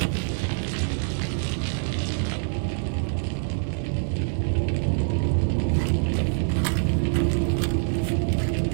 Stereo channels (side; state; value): left; silent; digital silence